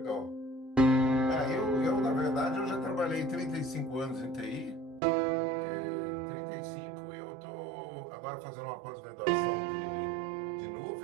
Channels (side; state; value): left; drops out; at 5.0 s